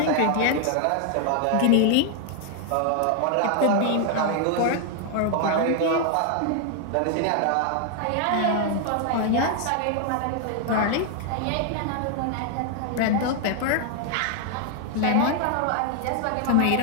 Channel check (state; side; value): different; both; correlation 0.00